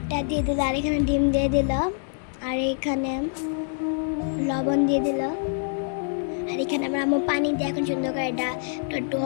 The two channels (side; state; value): right; silent; digital silence